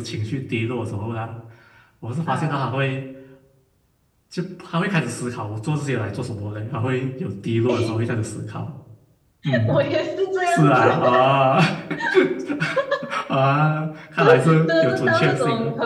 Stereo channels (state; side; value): identical; both; correlation 1.00